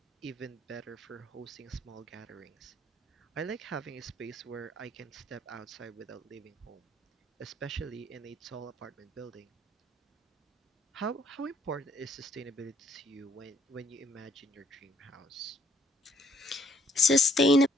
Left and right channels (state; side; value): normal; both; correlation 0.66